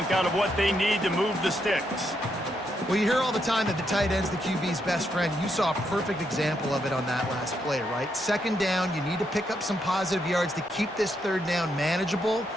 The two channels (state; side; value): normal; both; correlation 0.79